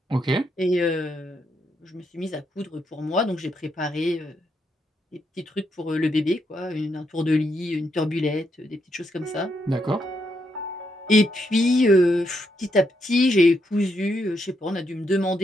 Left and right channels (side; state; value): both; normal; correlation 0.79